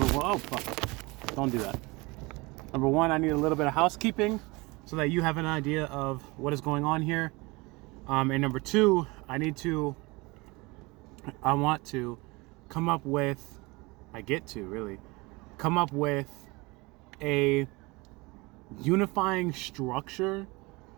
one, oh fuck, don't do that. Number one, I need a little bit of housekeeping so that you have an idea of what is going on here. And number two, I want to come up with, I get to really come up with a unifying structure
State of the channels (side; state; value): left; quieter; 24.8 dB